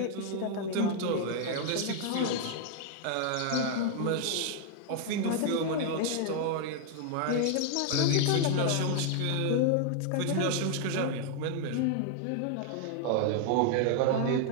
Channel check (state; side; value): different; both; correlation 0.00